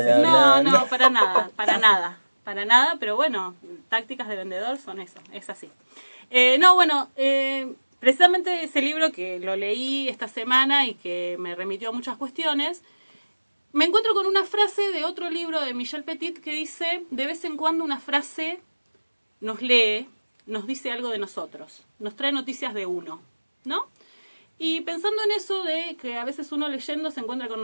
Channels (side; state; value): both; inverted; correlation -1.00